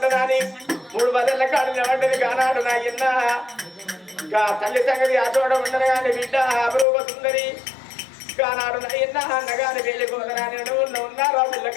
3 బదళ్ళ కాడ నిలబడ్డది కానాడు నా ఇన్న ఇంకా తల్లి సంగతి అచోడ ఉండరు కానీ బిడ్డ అపరూప సుందరి కానాడు నా ఇన్న అన్నగాని వెళ్ళిపోతున్నాను ఉన్నారు ఆ పిల్ల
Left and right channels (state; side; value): drops out; right; at 6.9 s